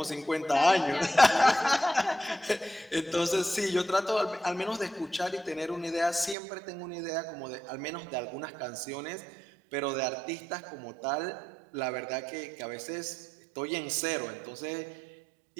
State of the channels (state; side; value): drops out; left; at 6.4 s